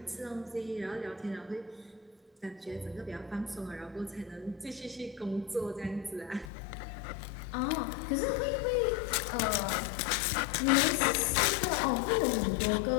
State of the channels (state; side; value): drops out; right; at 6.5 s